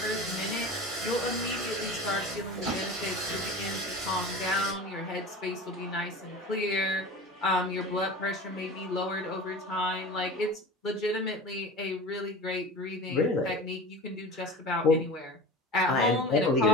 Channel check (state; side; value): normal; both; correlation 0.35